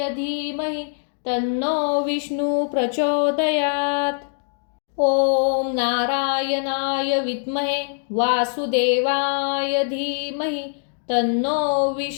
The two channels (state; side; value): silent; right; digital silence